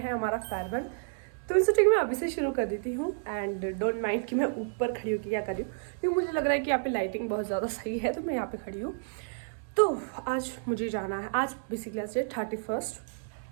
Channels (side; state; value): left; silent; digital silence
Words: हमारा फेयरवेल। तो मैं सोचा कि मैं अभी से शुरू कर देती हूँ एंड डोंट माइंड कि मैं ऊपर खड़ी हूँ कि क्या कर रही हूँ, क्योंकि मुझे लग रहा है कि यहाँ पे लाइटिंग बहुत ज़्यादा सही है तो मैं यहाँ पे खड़ी हूँ। तो आज मुझे जाना है, आज बेसिकली आज 31